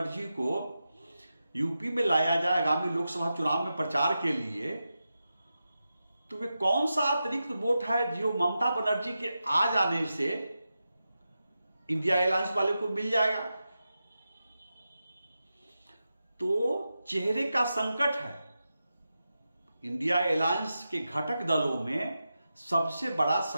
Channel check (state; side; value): inverted; both; correlation -0.91